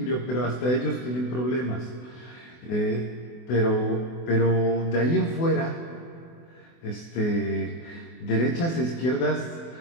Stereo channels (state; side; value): late; right; 24 ms